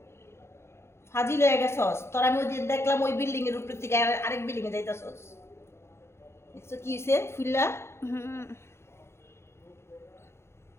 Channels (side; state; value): right; late; 0.13 ms